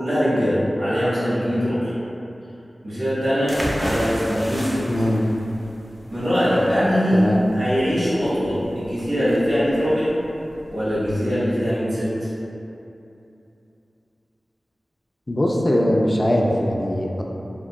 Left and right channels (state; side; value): normal; both; correlation 0.96